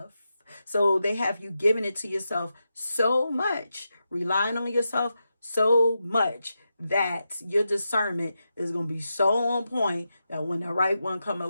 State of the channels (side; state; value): both; inverted; correlation -0.88